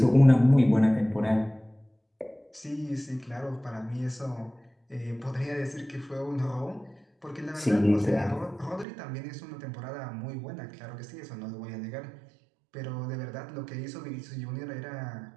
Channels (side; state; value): left; drops out; at 8.8 s